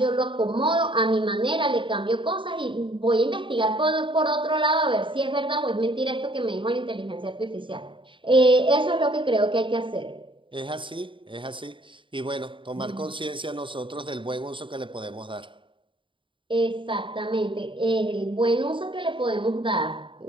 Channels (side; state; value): left; late; 0.24 ms